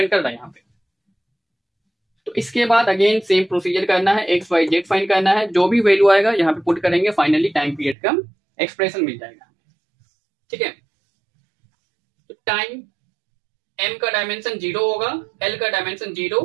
कर रहा है यहाँ पे। तो इसके बाद अगेन सेम प्रोसीजर करना है, एक्स वाई जेड फाइंड करना है, जो भी वैल्यू आएगा यहाँ पे पुट करेंगे, फाइनली टाइम पीरियड का एक्सप्रेशन मिल जाएगा। ठीक है, तो टाइम m का डायमेंशन 0 होगा, l का डायमेंशन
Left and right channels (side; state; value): left; drops out; at 8.0 s